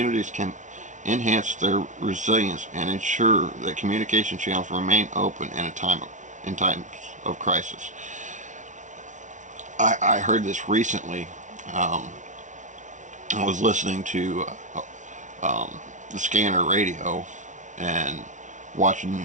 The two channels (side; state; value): left; late; 0.36 ms